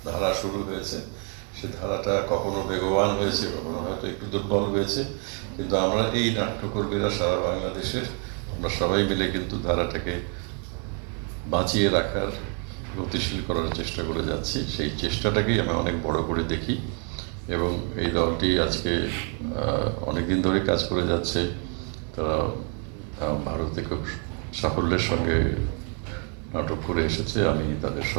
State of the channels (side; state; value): left; quieter; 39.6 dB